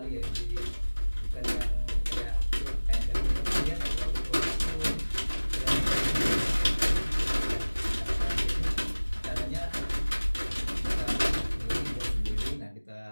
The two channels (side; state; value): both; inverted; correlation -1.00